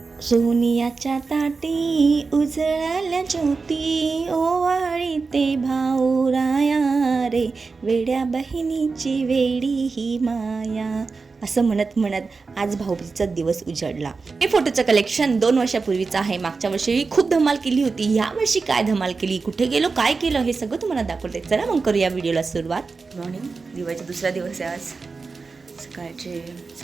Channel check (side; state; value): left; quieter; 4.4 dB